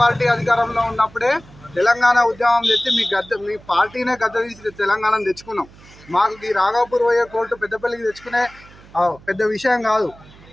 పార్టీ అధికారంలో ఉన్నప్పుడే తెలంగాణ ఉద్యమం తెచ్చి మీ పార్టీనే గద్ద తీసి తెలంగాణను తెచ్చుకున్నాం. మాకు ఈ రాఘవపూర్ పోయే కోర్టు పెద్దపల్లికి తెచ్చుకునే పెద్ద విషయం కాదు.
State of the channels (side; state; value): right; noise; hum, 23 dB below the sound